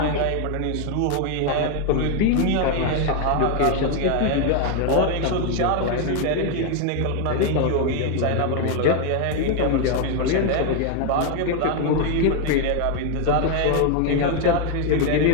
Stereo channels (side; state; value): both; different; correlation 0.01